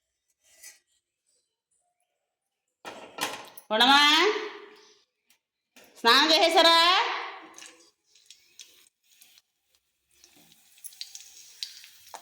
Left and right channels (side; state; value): both; identical; correlation 1.00